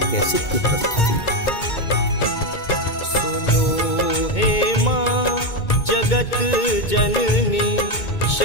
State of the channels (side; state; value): right; late; 2.2 ms